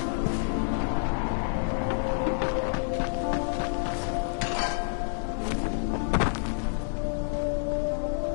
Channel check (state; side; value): silent; right; digital silence